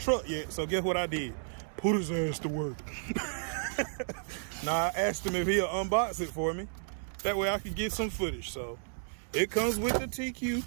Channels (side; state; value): left; silent; 56 dB below the other